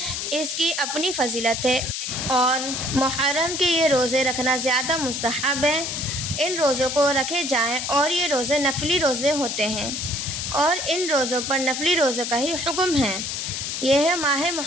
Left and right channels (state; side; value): noise; left; hiss, 3 dB below the sound